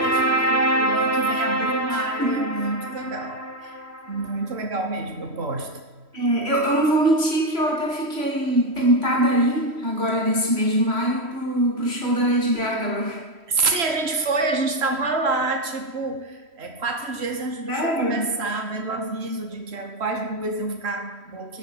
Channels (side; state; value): left; late; 3.1 ms